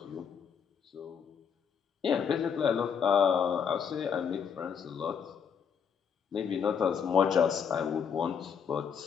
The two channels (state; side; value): quieter; right; 7.1 dB